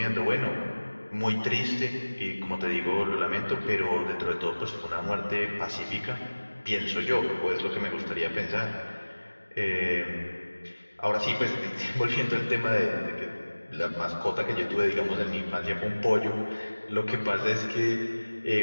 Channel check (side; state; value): both; inverted; correlation -1.00